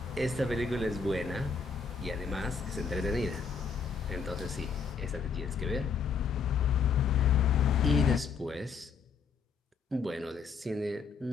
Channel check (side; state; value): right; quieter; 5.5 dB